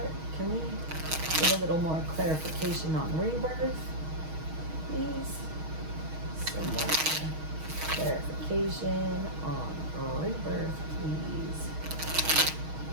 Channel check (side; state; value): left; late; 6.3 ms